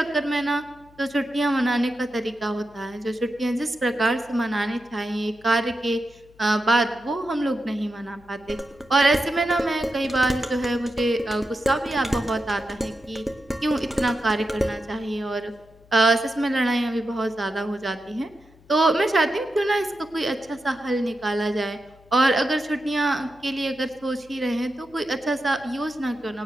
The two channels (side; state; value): left; noise; hum, 27 dB below the sound